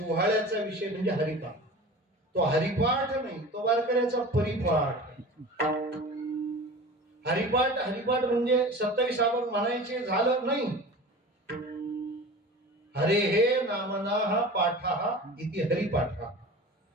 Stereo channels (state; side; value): normal; both; correlation 0.37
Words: विषय म्हणजे हरिपाठ. तो हरिपाठ नाही, तो वारकऱ्याचा परिपाठ. हरिपाठ हरिपाठ म्हणजे 27 आपण म्हणायचे झालं नाही. हरे हे नामना पाठा इति हरिपाठ.